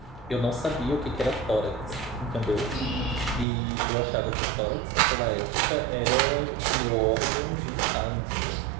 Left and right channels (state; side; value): drops out; left; at 3.5 s